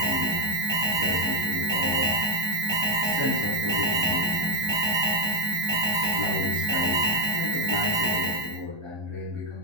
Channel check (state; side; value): late; left; 1.2 ms